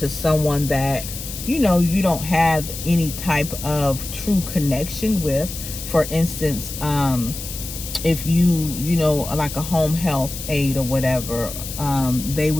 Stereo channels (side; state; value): left; noise; hiss, 9 dB below the sound